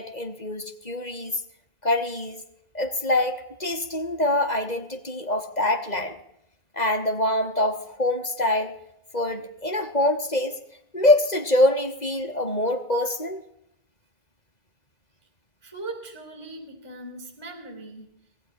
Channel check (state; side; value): late; right; 2.0 ms